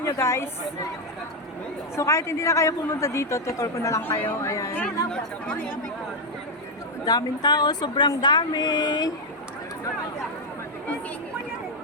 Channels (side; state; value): both; normal; correlation 0.02